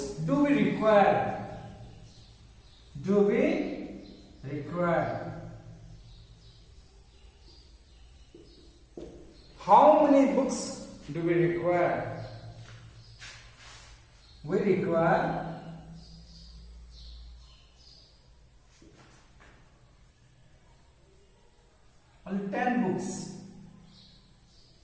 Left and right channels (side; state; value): both; identical; correlation 1.00